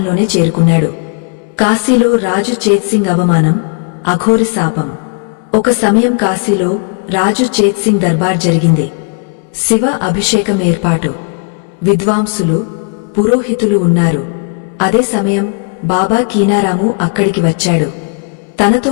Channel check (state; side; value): quieter; right; 37.8 dB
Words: చేరుకున్నాడు. కాశీలో రాజు చేత్సింగ్ అవమానం, అఘోరి శాపం. ఒక సమయం కాశీలో రాజు చేత్సింగ్ దర్బార్ జరిగింది. శివ అభిషేకం ఏర్పాటు. విద్వాంసులు, పురోహితులు ఉన్నారు. అదే సమయం బాబా కీనారాము అక్కడికి వచ్చాడు.